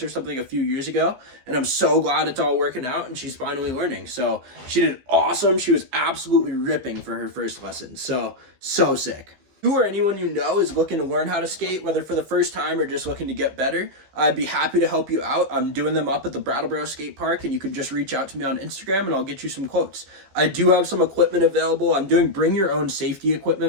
or something a few years ago, and I'm so glad it's all working out and she's finally learning. So she did awesome. She was absolutely ripping for her first lesson. So sick. You or anyone you know is looking to learn how to skate, whether for the first time or just looking to get better, I'd be happy to help you out. I'm doing them up at the Brattleboro Skate Park, and you can just reach out to me on Instagram and I'll get you some quotes. I do have some equipment available. I'm doing bring your own safety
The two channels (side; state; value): left; late; 15 ms